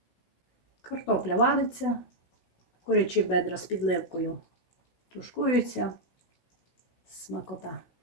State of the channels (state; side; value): late; right; 16 ms